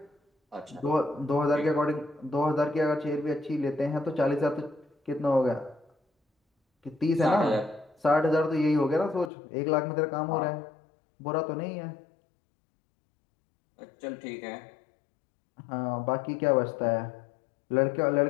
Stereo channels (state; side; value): drops out; right; at 9.3 s